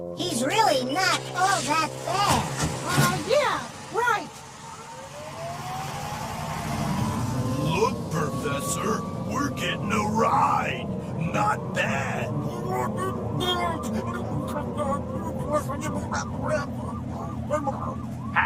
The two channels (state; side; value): identical; both; correlation 1.00